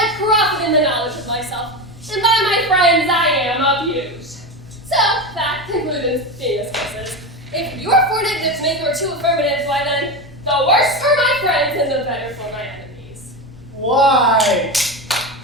profit in the knowledge of myself, and by my friends I am abused. So that concludes being discusses. If your 4 negatives make your 2 affirmatives, why then, the worse for my friends and the better for my enemies. Why,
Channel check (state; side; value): normal; both; correlation 0.20